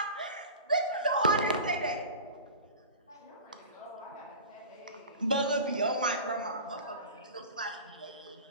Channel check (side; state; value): both; inverted; correlation -0.34